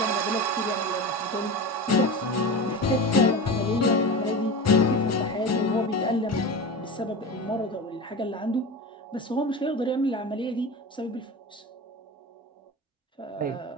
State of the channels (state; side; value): normal; both; correlation 0.27